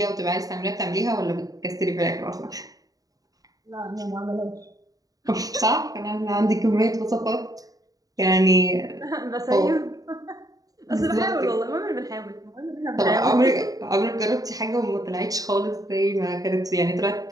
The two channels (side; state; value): left; late; 0.18 ms